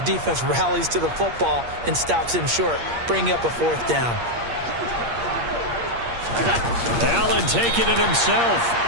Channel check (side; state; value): left; late; 8.5 ms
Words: defense rallies to the football and stops him short, bringing up a 4th down. Allen taking it himself.